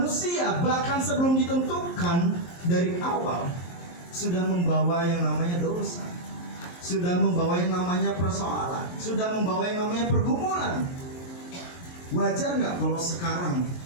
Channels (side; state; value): right; late; 23 ms